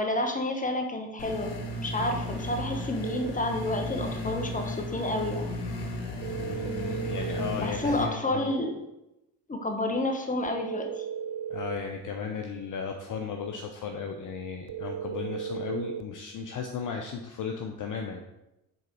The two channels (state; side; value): normal; both; correlation 0.16